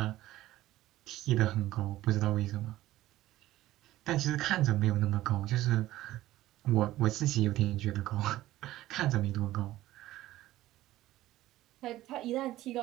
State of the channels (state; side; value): quieter; left; 15.5 dB